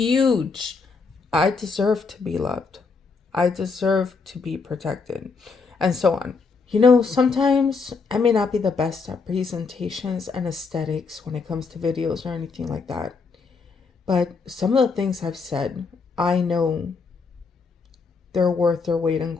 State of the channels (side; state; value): right; quieter; 4.7 dB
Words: I deserve to be loved. I deserve to be protected. And so on. Sometimes I may not be the best at presentations and aesthetics when it comes to videos or anything like that. But some of the things I've said, I know they're worth their weight in